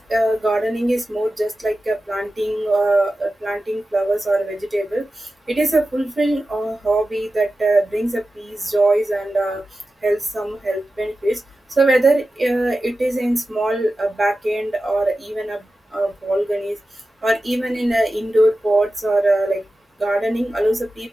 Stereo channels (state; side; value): normal; both; correlation 0.94